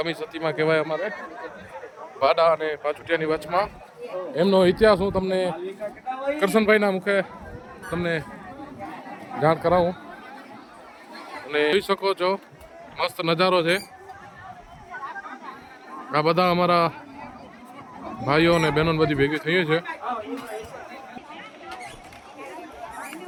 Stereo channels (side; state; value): both; identical; correlation 1.00